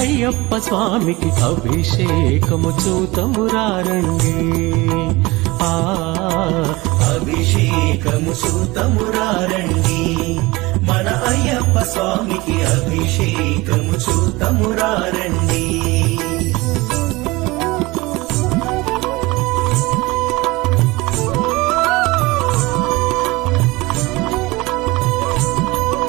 అయ్యప్ప స్వామికి అభిషేకము చూతము రండి. అభిషేకము చూతము రండి, మన అయ్యప్ప స్వామికి అభిషేకము చూతము రండి.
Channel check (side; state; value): left; quieter; 22.1 dB